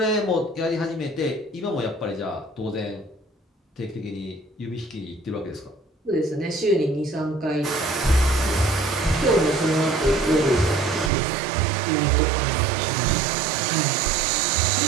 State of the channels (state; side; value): drops out; left; at 11.1 s